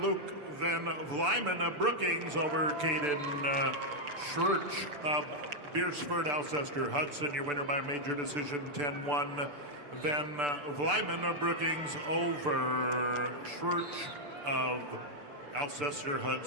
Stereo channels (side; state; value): left; late; 6.8 ms